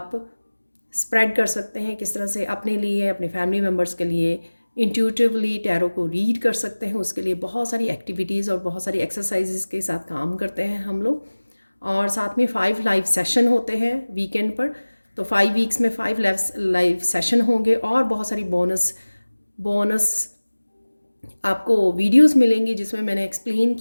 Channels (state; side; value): inverted; both; correlation -1.00